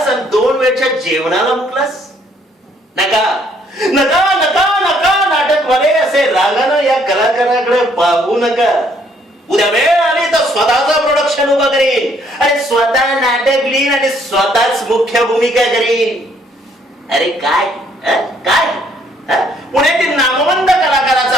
आणि 2 वेळच्या जेवणाला मुकलास. नका नका नका नका नाटकवाले असे रागानं या कलाकाराकडे पाहू नका. उद्या वेळ आली तर स्वतःचा प्रोडक्शन उभा करीन आणि स्वतः नाटक लिहीन आणि स्वतःच मुख्य भूमिका करीन. अरे काय काय पुण्यातील नामवंत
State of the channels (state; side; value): normal; both; correlation 0.66